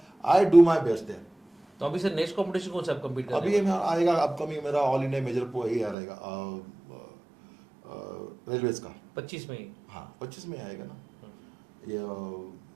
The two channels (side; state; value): left; drops out; at 6.0 s